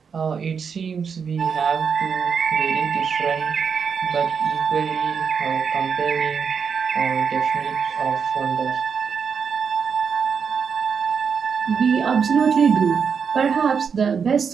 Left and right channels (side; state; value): left; quieter; 6.4 dB